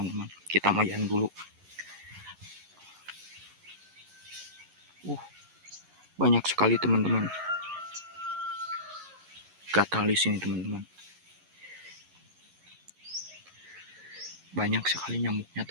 Kita mayan dulu. Banyak sekali teman-teman. Gatal di sini teman-teman. Banyak sekali nyamuknya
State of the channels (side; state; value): left; late; 11 ms